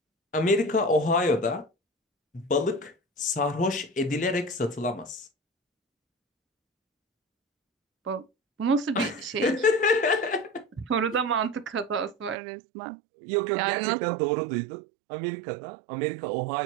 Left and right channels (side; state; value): left; drops out; at 12.4 s